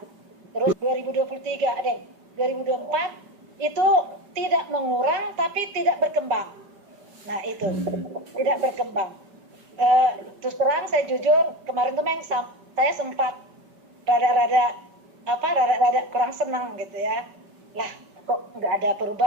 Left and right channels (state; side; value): late; left; 5.2 ms